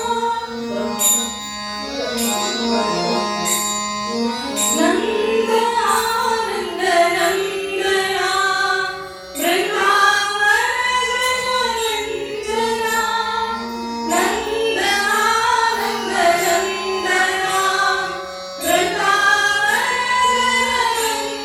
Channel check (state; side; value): identical; both; correlation 1.00